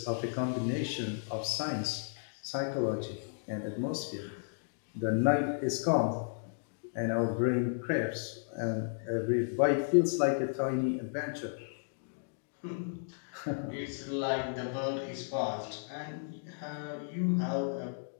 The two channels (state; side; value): silent; right; digital silence